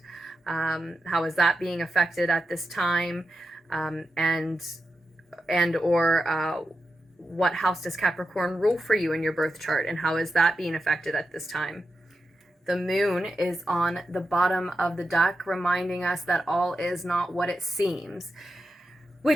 How is that being affected at this time? And or what house does Capricorn rule for you in your birth chart, and how is that being affected at this time? The moon is on the bottom of the deck, reminding us that all is not what it seems,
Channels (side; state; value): both; normal; correlation 0.89